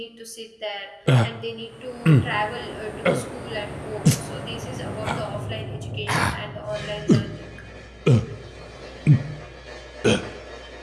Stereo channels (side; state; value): both; identical; correlation 1.00